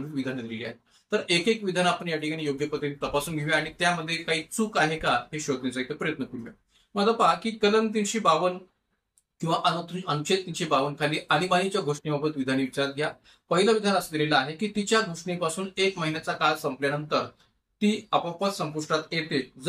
विधानं दिलेली आहेत. तर एक विधान आपण या ठिकाणी योग्य पद्धतीने तपासून घेऊया आणि त्यामध्ये काही चूक आहे का हे शोधण्याचा एक प्रयत्न करूया. मग आता पहा की कलम 352 किंवा अनुच्छेद 352 खाली आणीबाणीच्या घोषणेबाबत विधाने विचारात घ्या. पहिलं विधान असं दिलेलं आहे की तिच्या घोषणेपासून 1 महिन्याचा काळ संपल्यानंतर ती आपोआपच संपुष्टात येते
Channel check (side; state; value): both; identical; correlation 1.00